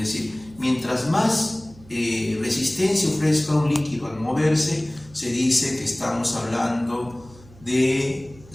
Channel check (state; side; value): noise; right; hum, 23 dB below the sound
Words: mientras más resistencia ofrezca un líquido al moverse, se dice que estamos hablando de